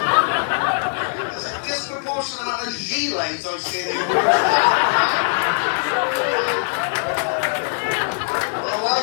There's a disproportionate amount of gilets I see there. I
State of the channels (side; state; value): right; silent; digital silence